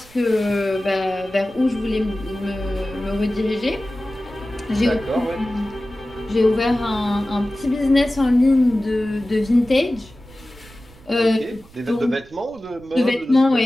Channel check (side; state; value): right; noise; rumble, 24 dB below the sound